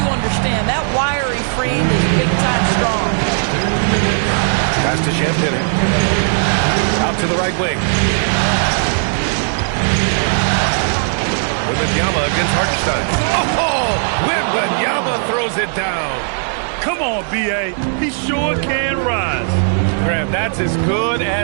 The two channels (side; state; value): left; silent; 64 dB below the other